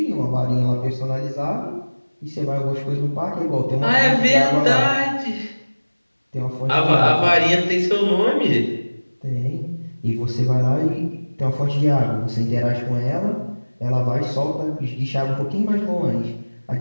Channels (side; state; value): both; inverted; correlation -1.00